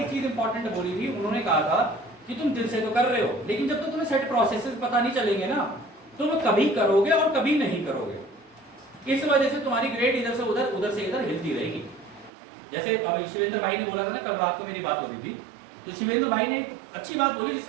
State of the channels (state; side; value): drops out; left; at 12.3 s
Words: चीज इंपॉर्टेंट बोली थी, उन्होंने कहा था कि तुम दिल से तो कर रहे हो लेकिन जब तक तुम्हें सेट प्रोसेसेस पता नहीं चलेंगे ना तुम कभी करोगे और कभी नहीं करोगे। इस वजह से तुम्हारी ग्रेड इधर से उधर, उधर से इधर हिलती रहेगी। जैसे अब शिवेंद्र भाई ने बोला था ना, कल रात को मेरी बात हो रही थी, तो शिवेंद्र भाई ने अच्छी बात बोली